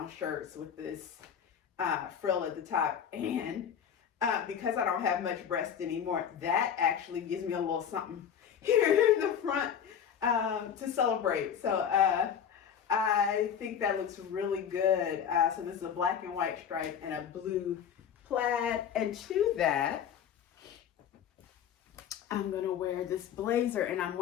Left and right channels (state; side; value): quieter; right; 8.3 dB